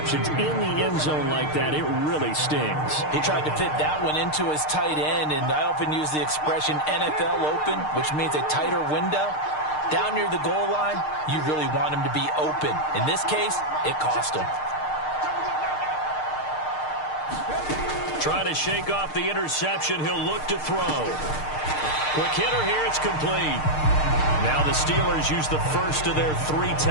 in the end zone like that, it really stings. He tried to fit that one into his tight end, and I often use the expression NFL open, which means a tighter window. Down near the goal line, you really want him to be open. In this case, it cost him. Trying to shake off the interception, he'll look to throw. Quick hitter here, it's complete. Now the Steelers use the first of their 3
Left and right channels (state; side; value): late; right; 6.6 ms